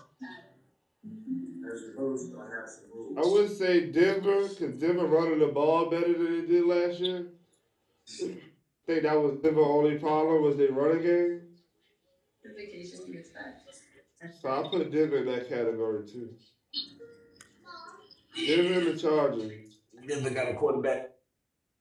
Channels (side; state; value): both; identical; correlation 1.00